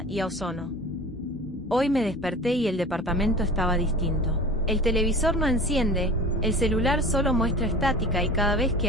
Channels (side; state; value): both; normal; correlation 0.39